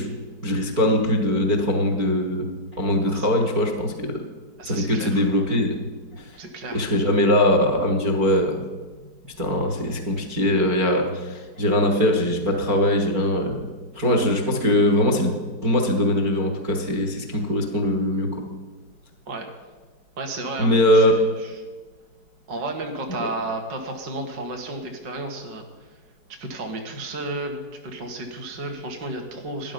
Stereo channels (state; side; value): late; left; 4.5 ms